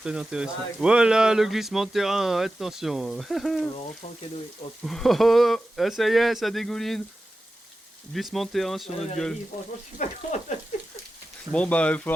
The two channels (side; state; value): both; normal; correlation 0.93